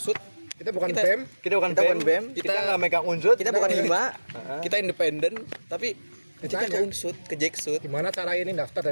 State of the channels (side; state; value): both; inverted; correlation -1.00